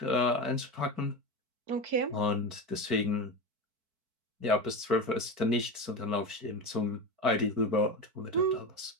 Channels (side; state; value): left; late; 4.5 ms